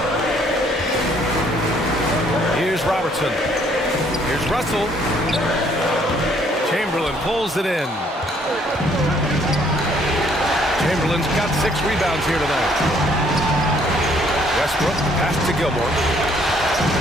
Here's Robertson. Here's Russell. Chamberlain pulls it in. Chamberlain's got 6 rebounds here tonight. Westbrook pass to Gilmore.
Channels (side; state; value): both; normal; correlation 0.64